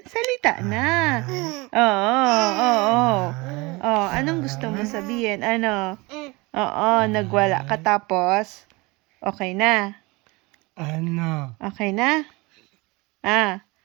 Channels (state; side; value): quieter; left; 24.6 dB